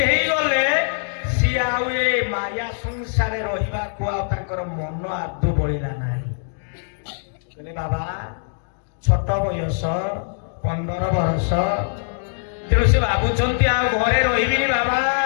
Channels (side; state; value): right; silent; digital silence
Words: ହେଇଗଲେ ସିଏ ଆଉ ଏ ମାୟା ସଂସାରରେ ରହିବାକୁ ଆଉ ତାଙ୍କର ମନ ଆଦୌ ବଳିଲା ନାହିଁ। କହିଲେ ବାବା ଛୋଟ ବୟସ 15 ବର୍ଷ, ତେଣୁ ସେ ଭାବୁଛନ୍ତି ଆଉ ଘରେ ରହିବିନି, ବାବା